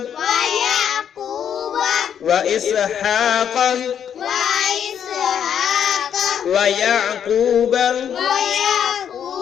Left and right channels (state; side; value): quieter; right; 8.7 dB